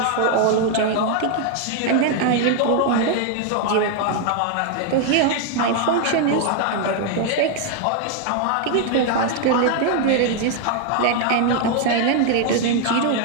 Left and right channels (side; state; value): both; different; correlation 0.00